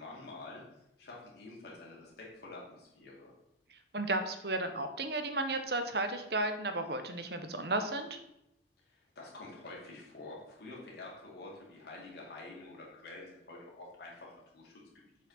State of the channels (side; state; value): both; normal; correlation -0.16